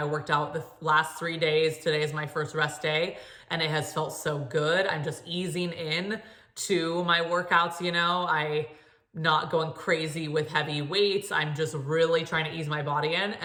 worked out the last 3 days. Today is my first rest day, and it has felt so good. I'm just easing in to my workouts, I'm not going crazy with heavy weights. I'm just really trying to ease my body in,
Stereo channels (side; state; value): both; identical; correlation 1.00